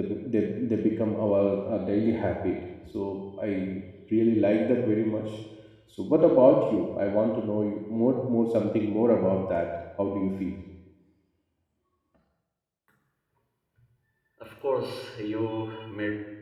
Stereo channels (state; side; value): identical; both; correlation 1.00